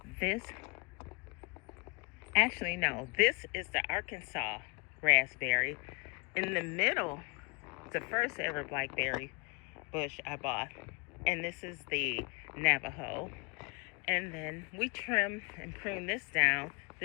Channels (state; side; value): quieter; right; 34.3 dB